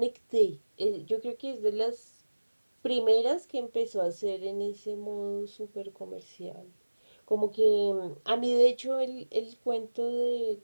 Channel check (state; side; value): inverted; both; correlation -1.00